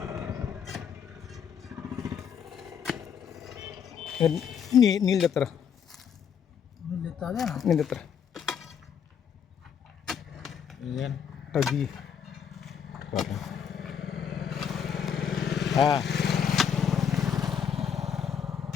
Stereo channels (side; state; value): right; quieter; 7.7 dB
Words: నీళ్ళు తెత్తరా, నీళ్ళు తెత్తరా అది